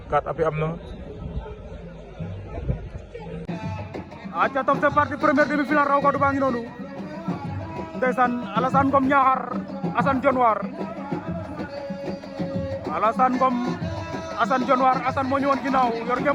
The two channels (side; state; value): both; identical; correlation 1.00